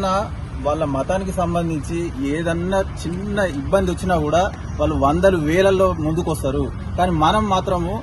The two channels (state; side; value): identical; both; correlation 1.00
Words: వాళ్ళ మతానికి సంబంధించి ఏదన్నా చిన్న ఇబ్బంది వచ్చినా కూడా వాళ్ళు వందలు వేలల్లో ముందుకు వస్తారు. కానీ మనం మాత్రము